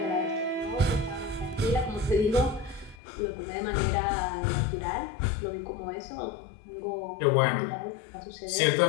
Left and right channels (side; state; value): right; drops out; at 3.0 s